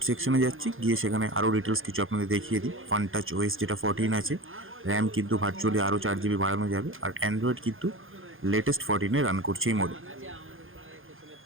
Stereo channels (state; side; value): late; left; 0.59 ms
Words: সেকশনে যাচ্ছি, গিয়ে সেখানে আরও ডিটেলস কিছু আপনাদের দেখিয়ে দিই। ফান টাচ ওএস যেটা 14 আছে, র্যাম কিন্তু ভার্চুয়ালি আরও 4GB বাড়ানো যাবে, আর অ্যান্ড্রয়েড কিন্তু লেটেস্ট 14-এ রান করছে এই মডেল।